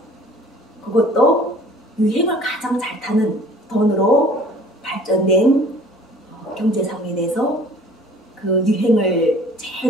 그것도 유행을 가장 잘 타는 돈으로 발전된 경제상에 대해서 그 유행을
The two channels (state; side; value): normal; both; correlation 0.51